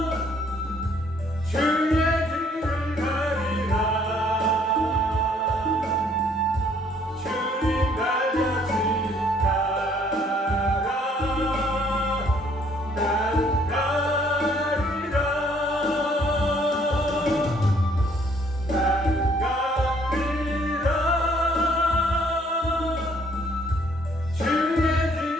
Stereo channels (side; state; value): both; normal; correlation 0.63